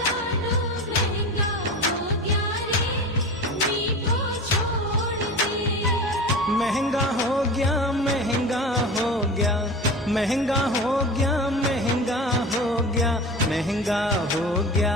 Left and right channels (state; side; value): normal; both; correlation 0.31